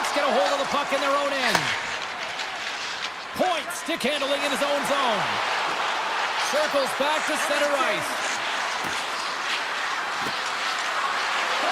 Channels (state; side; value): identical; both; correlation 1.00